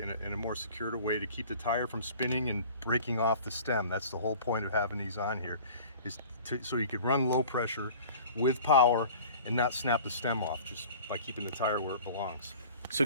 a more secure way to keep the tire from spinning and breaking off the stem. That's the whole point of having these on here, is so you could run low pressure with power and not snap the stem off, just by keeping the tire where it belongs. So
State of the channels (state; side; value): inverted; both; correlation -0.44